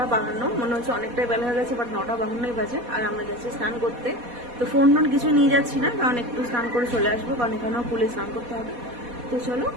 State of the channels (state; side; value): late; left; 4.2 ms